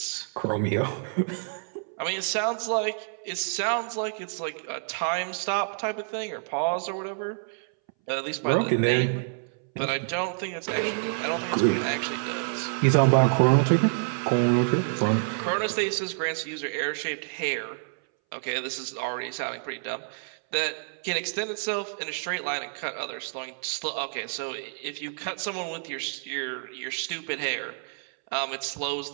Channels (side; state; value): left; silent; 59 dB below the other